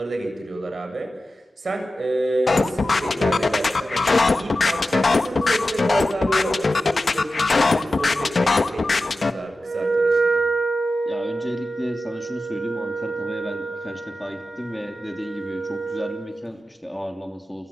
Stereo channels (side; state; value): both; normal; correlation 0.93